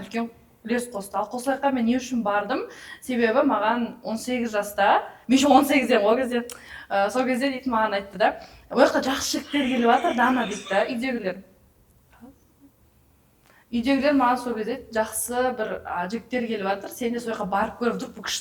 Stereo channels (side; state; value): both; identical; correlation 1.00